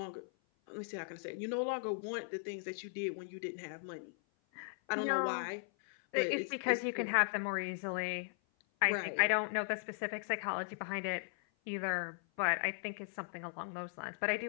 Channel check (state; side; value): silent; right; 53 dB below the other